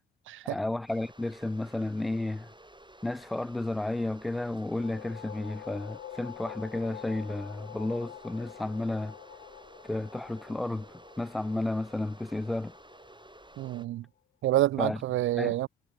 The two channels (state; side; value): normal; both; correlation 0.62